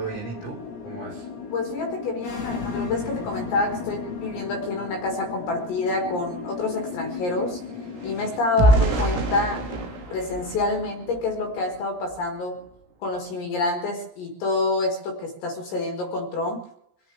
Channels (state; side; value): late; right; 17 ms